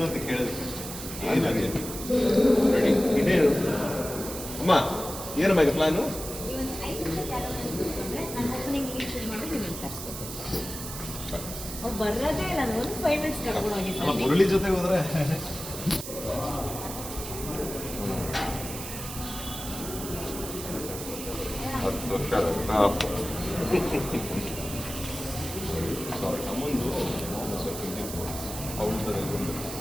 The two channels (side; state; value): right; noise; hiss, 9 dB below the sound